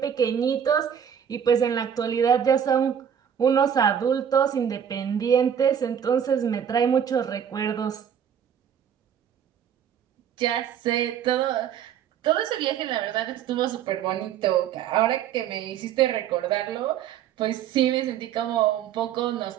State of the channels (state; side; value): quieter; left; 8.7 dB